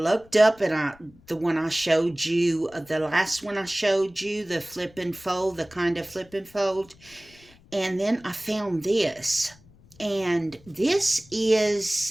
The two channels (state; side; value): noise; left; rumble, 27 dB below the sound